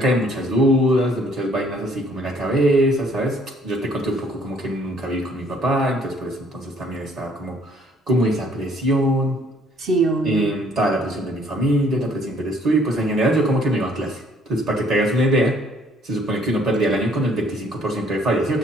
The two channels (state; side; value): normal; both; correlation 0.62